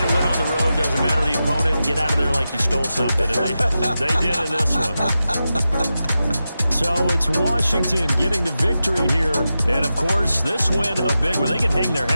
a win on the road, doesn't matter the opponent, get out of there like you stole something. And they did in this one. So it's Washington getting the victory here. And, of course, this win a big one. They can hang their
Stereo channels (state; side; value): inverted; both; correlation -0.91